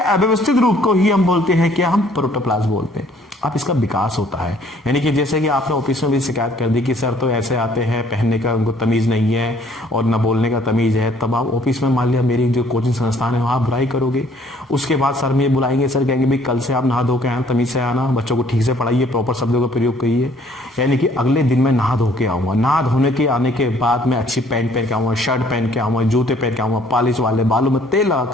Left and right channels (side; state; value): both; normal; correlation 0.60